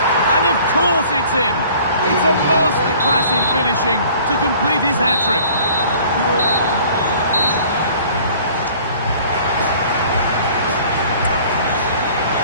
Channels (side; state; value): both; inverted; correlation -0.51